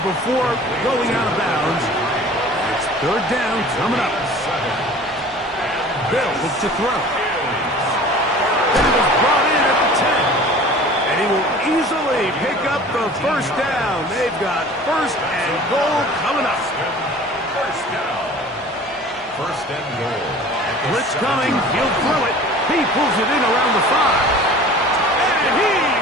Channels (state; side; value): normal; both; correlation 0.44